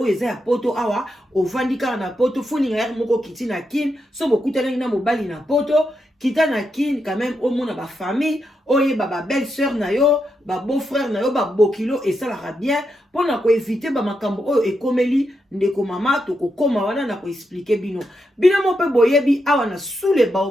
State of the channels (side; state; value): both; normal; correlation 0.84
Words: eza ya poto awa ovandika na poto funinga ya moko kiti na kin so bokutana na mobali na poto kita na kin quand même au mona ba famille oye ba belle sœur na yo ba beau frère na yo ba bokilo et ça la bien pour na ko éviter ba makambo oyo ekomeli ndeko mama to ko koma wana na ko expliquer bino mo pe boyebi awa na sous les